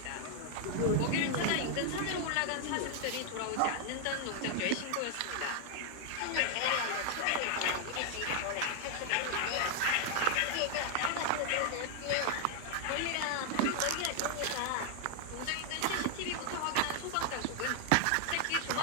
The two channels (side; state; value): both; different; correlation 0.00